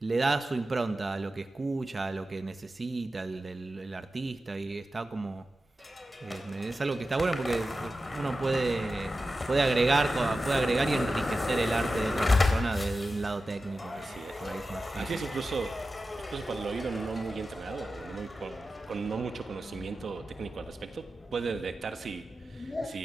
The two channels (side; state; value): both; normal; correlation 0.93